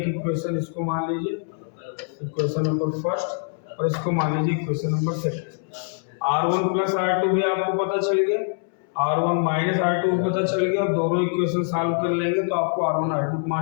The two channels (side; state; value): right; silent; 63 dB below the other